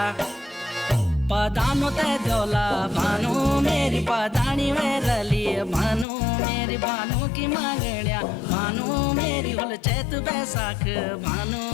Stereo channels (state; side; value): drops out; right; at 6.1 s